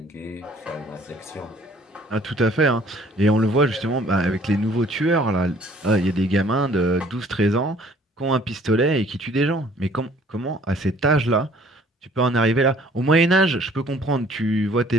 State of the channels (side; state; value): both; normal; correlation 0.56